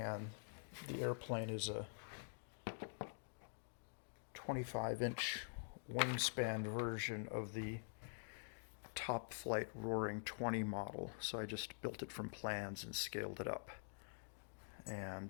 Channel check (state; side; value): silent; right; digital silence